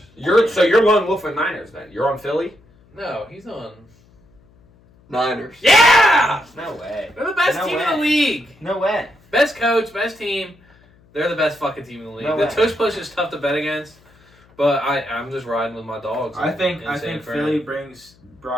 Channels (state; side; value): noise; left; hum, 30 dB below the sound